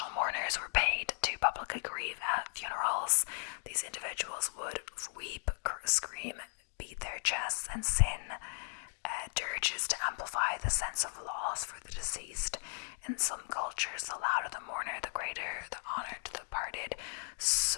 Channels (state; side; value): silent; right; 54 dB below the other